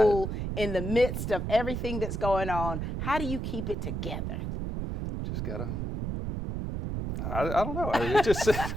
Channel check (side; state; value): right; noise; rumble, 3 dB below the sound